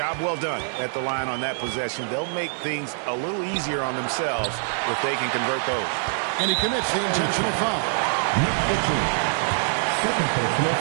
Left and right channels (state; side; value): silent; left; digital silence